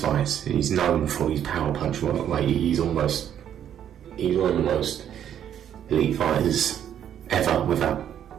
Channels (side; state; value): left; quieter; 9.8 dB